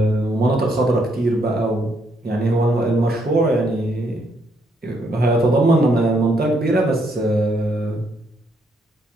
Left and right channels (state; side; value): normal; both; correlation 0.73